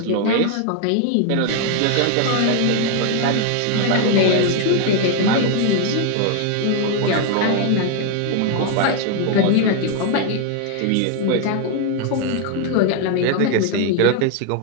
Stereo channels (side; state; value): both; different; correlation 0.00